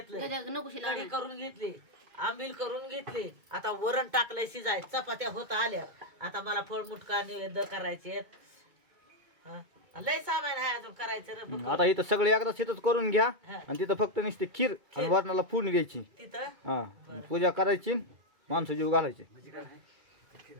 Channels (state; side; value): late; left; 2.2 ms